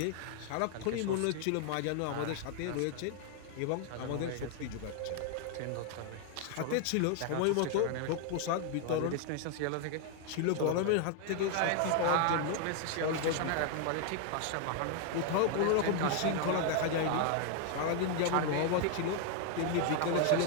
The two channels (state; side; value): different; both; correlation 0.00